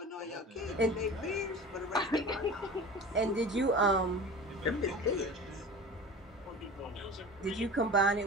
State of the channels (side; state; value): both; normal; correlation 0.35